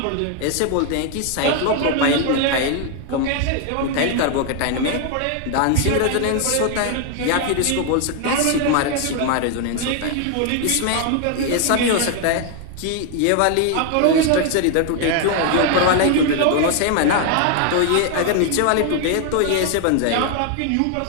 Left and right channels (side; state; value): both; different; correlation 0.00